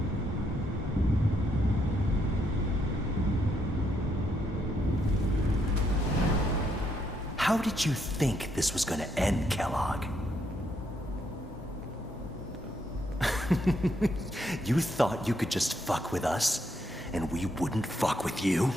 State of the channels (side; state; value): both; normal; correlation 0.76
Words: How did you think this was gonna end, Kellogg? You thought you could just fuck with us, and we wouldn't fuck with you?